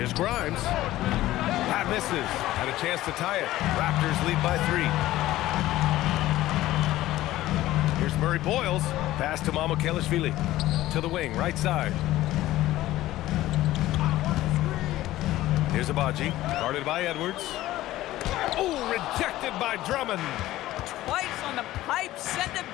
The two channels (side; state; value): right; quieter; 15.6 dB